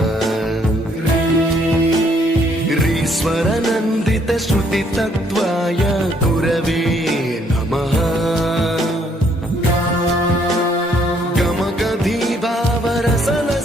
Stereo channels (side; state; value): both; normal; correlation 0.67